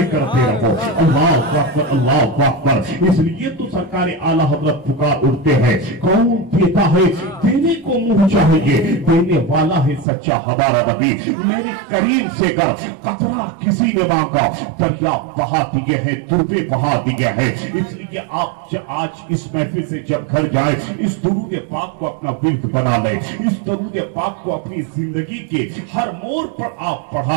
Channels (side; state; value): left; drops out; at 10.1 s